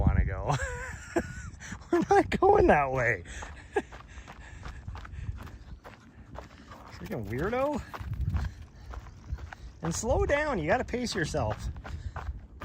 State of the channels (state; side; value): identical; both; correlation 1.00